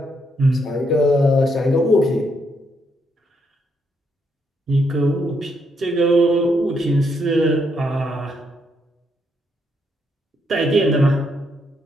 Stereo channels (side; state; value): both; normal; correlation 0.76